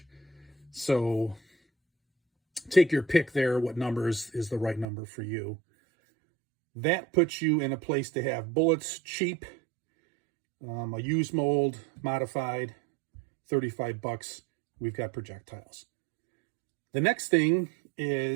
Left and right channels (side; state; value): left; drops out; at 4.9 s